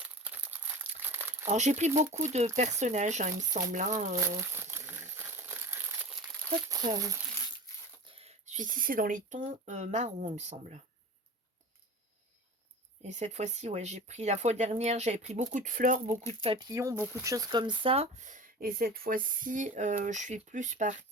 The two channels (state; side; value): normal; both; correlation 0.34